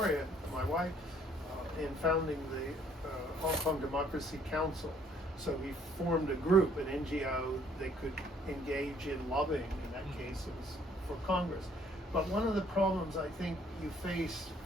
my wife, in founding the Hong Kong Democracy Council. So we formed a group, an NGO, they could engage in lobbying. In that case, it was for Congress. But one of the problems I think you face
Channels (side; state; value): both; normal; correlation 0.62